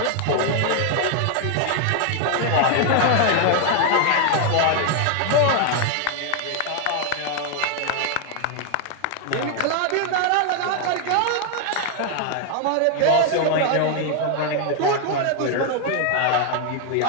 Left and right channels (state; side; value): different; both; correlation 0.00